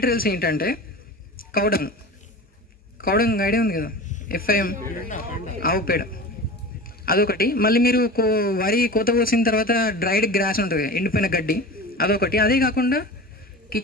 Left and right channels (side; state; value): both; normal; correlation 0.33